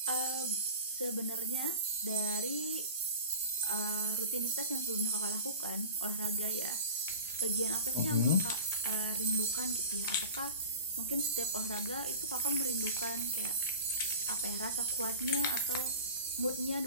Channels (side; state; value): both; inverted; correlation -0.39